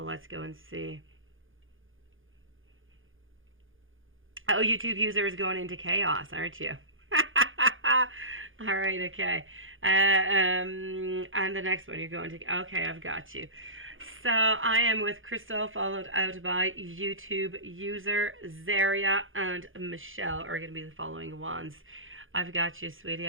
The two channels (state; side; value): late; left; 0.58 ms